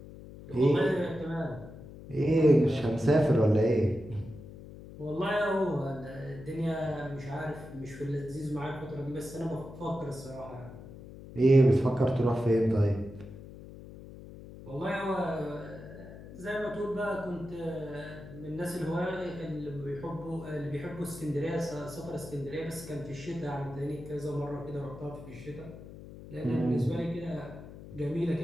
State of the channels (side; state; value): left; noise; hum, 15 dB below the sound